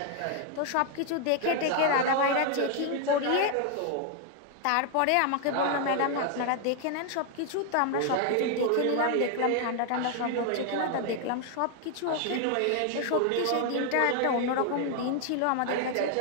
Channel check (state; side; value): different; both; correlation 0.00